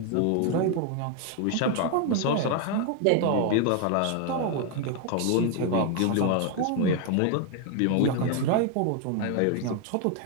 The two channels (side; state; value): both; different; correlation 0.01